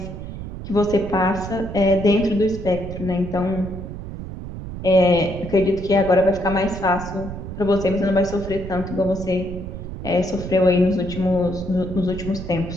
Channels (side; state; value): right; noise; rumble, 9 dB below the sound